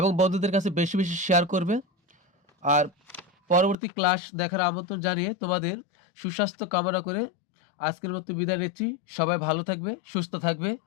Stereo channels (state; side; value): drops out; right; at 3.8 s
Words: বন্ধুদের কাছে বেশি বেশি শেয়ার করবে। আর পরবর্তী ক্লাস দেখার আমন্ত্রণ জানিয়ে তোমাদের সুস্বাস্থ্য কামনা করে আজকের মতো বিদায় নিচ্ছি। সবাই ভালো থাকবে, সুস্থ থাকবে।